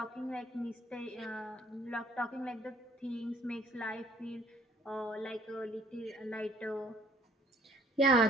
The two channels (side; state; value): both; normal; correlation 0.60